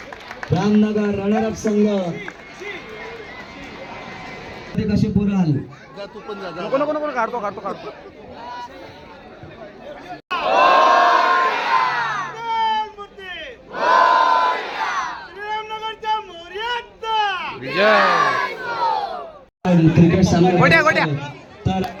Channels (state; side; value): identical; both; correlation 1.00